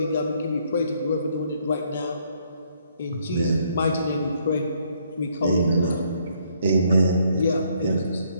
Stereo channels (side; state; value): both; inverted; correlation -0.69